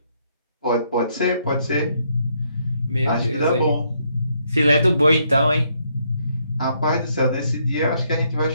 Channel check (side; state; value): both; inverted; correlation -0.73